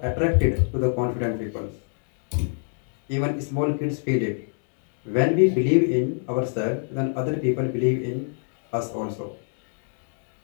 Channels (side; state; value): right; silent; digital silence